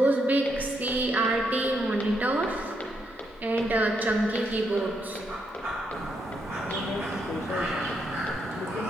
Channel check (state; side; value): normal; both; correlation 0.78